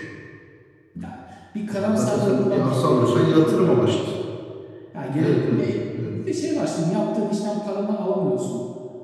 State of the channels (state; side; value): identical; both; correlation 1.00